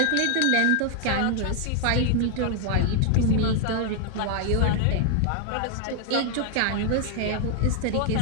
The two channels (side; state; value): both; different; correlation 0.00